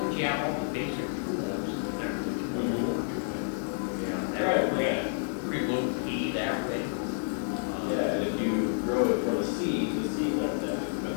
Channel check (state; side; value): silent; right; digital silence